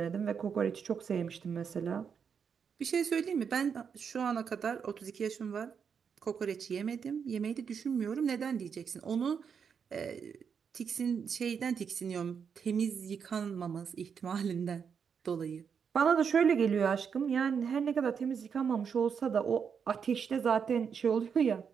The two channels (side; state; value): left; quieter; 6.7 dB